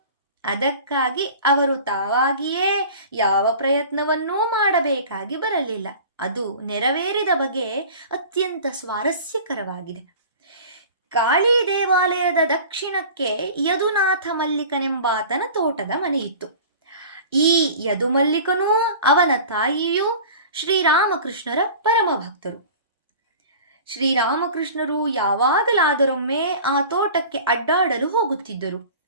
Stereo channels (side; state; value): both; inverted; correlation -0.40